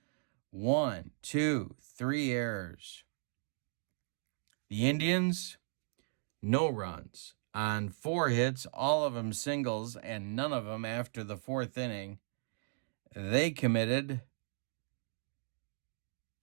1, 2, 3 errors. The Indians, no runs on 4 hits, all of them singles, and none of them after the 4th inning. They committed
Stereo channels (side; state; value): left; silent; digital silence